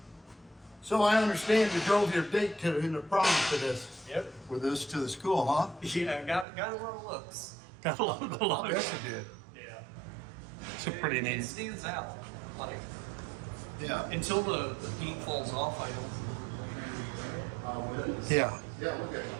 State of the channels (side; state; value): left; drops out; at 6.5 s